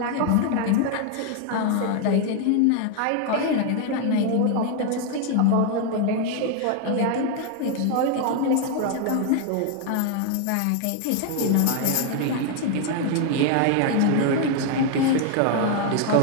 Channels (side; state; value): both; different; correlation 0.00